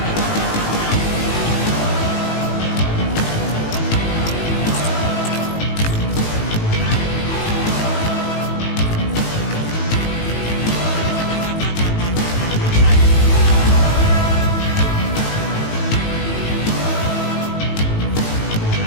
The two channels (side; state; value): right; late; 18 ms